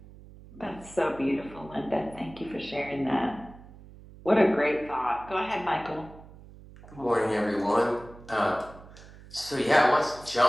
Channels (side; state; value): right; noise; hum, 19 dB below the sound